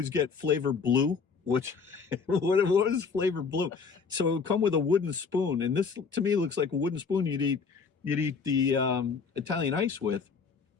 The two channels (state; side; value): quieter; right; 5.4 dB